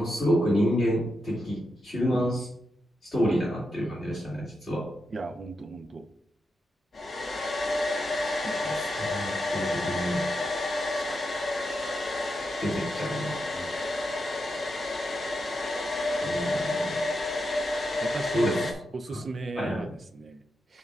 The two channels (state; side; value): normal; both; correlation 0.86